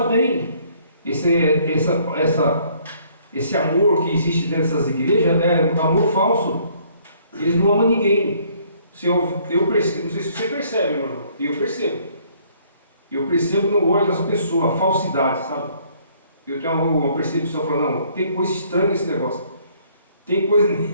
bem. Esse amor que existe dentro dessas igrejas é um amor falso. Eles não amam ninguém. Eu percebo, não sei se você percebe, meu irmão. Eu percebo no olho das pessoas a falsidade, sabe? Eu tenho uma percepção falando, não, tem coisa estranha nesse negócio. Tem coisa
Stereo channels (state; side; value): inverted; both; correlation -0.62